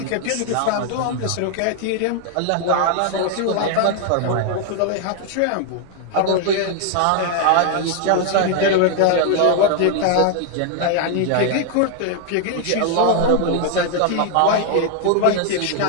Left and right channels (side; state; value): both; different; correlation 0.00